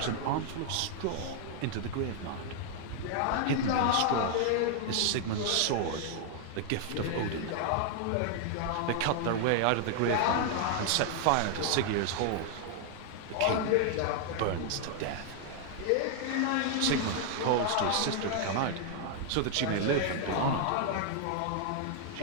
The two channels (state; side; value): different; both; correlation 0.00